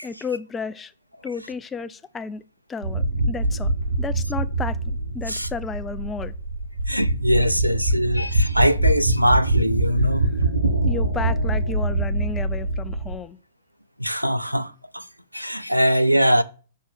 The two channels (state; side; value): inverted; both; correlation -0.70